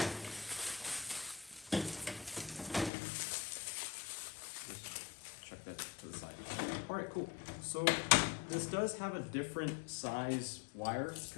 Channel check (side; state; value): right; drops out; at 2.9 s